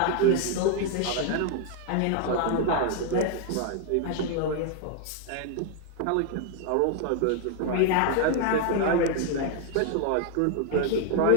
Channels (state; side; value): different; both; correlation 0.00